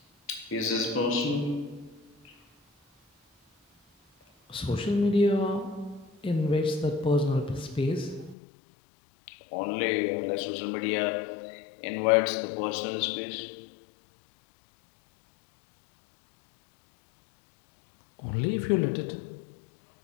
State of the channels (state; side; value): drops out; right; at 8.3 s